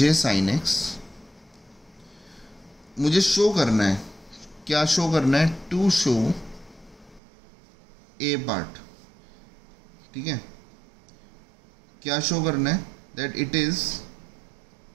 साइन एक्स, मुझे शो करना है, क्या शो करना है, टू शो ए पार्ट, ठीक है। क्या शो करना है, that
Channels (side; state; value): left; drops out; at 7.2 s